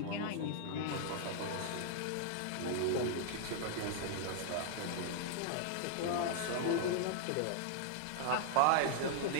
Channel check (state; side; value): different; both; correlation 0.00